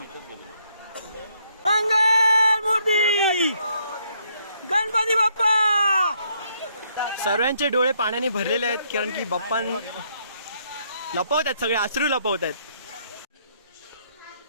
मंगल मूर्ती गणपती बाप्पा. सर्वांचे डोळे पाण्याने भरलेले आहेत, कारण की बाप्पा लपवत आहेत, सगळे अश्रू लपवत आहेत.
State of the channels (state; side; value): inverted; both; correlation -0.71